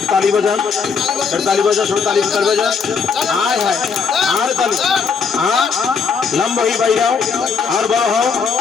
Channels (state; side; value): quieter; right; 5.7 dB